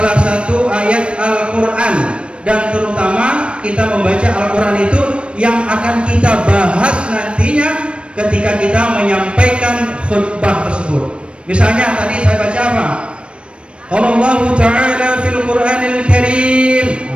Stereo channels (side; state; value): left; late; 0.058 ms